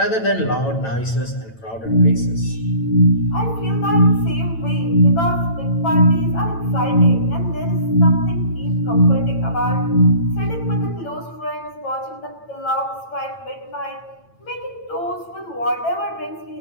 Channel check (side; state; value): right; late; 9.0 ms